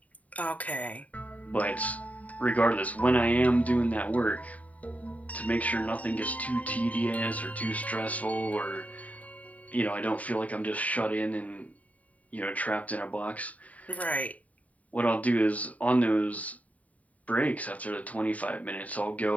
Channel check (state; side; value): late; right; 0.070 ms